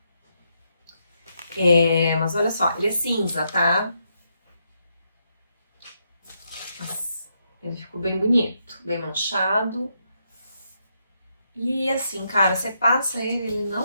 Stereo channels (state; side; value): inverted; both; correlation -0.79